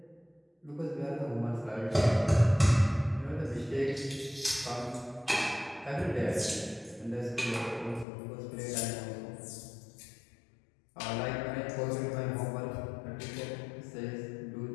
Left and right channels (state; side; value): drops out; right; at 8.1 s